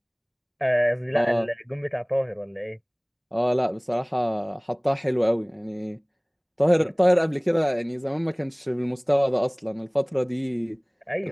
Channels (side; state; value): both; identical; correlation 1.00